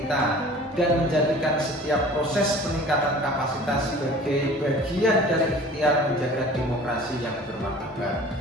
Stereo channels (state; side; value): normal; both; correlation 0.45